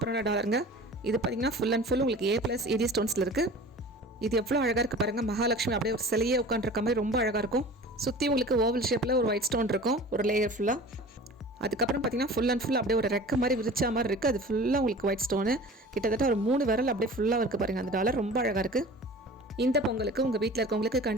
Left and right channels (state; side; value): normal; both; correlation 0.41